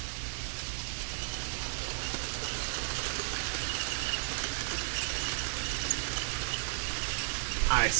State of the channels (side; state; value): left; silent; digital silence